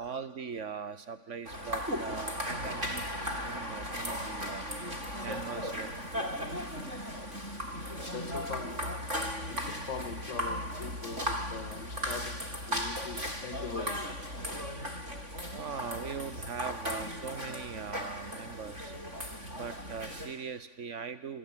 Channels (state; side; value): late; left; 3.5 ms